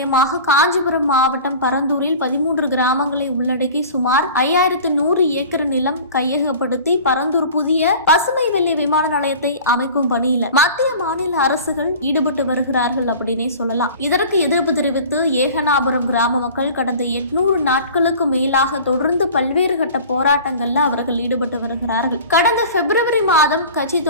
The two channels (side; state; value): both; inverted; correlation -0.40